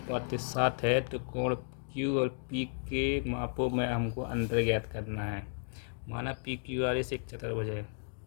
है तो कोण Q और P के मापों में हमको अंतर ज्ञात करना है। माना PQRS एक चतुर्भुज है,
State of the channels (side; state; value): right; silent; digital silence